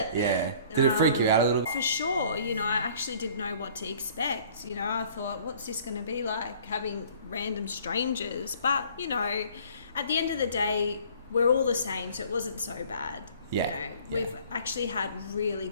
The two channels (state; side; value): inverted; both; correlation -0.53